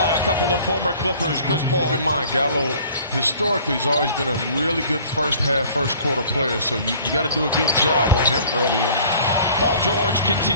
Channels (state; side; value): inverted; both; correlation -0.51